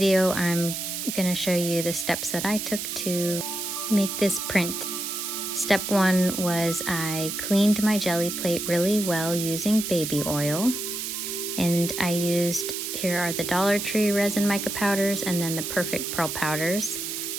I'm going to show you the steps that I took to make this print. Step one was I cleaned my jelly plate really well using baby oil. And I used, here are the Dollar Tree resin mica powders and then the Perfect Pearl powders.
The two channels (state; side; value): noise; right; hiss, 4 dB below the sound